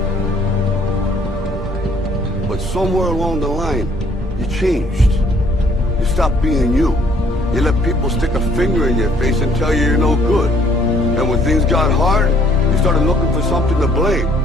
But somewhere along the line, you changed. You stopped being you. You let people stick a finger in your face and tell you you're no good. And when things got hard, you started looking for something to blame,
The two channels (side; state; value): both; normal; correlation 0.62